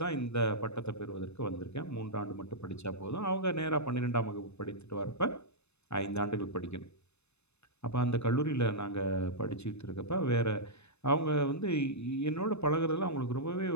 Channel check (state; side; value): late; right; 0.81 ms